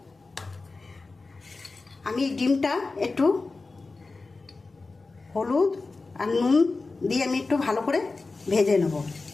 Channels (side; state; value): right; quieter; 3.7 dB